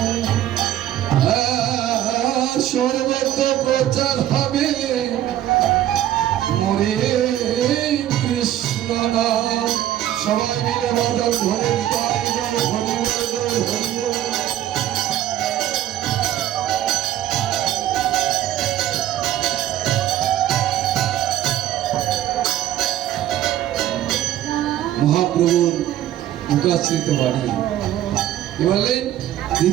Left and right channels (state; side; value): quieter; left; 12.4 dB